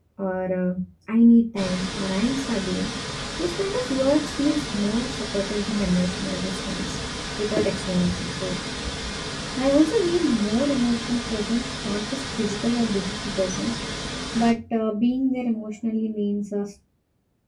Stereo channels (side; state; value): both; identical; correlation 1.00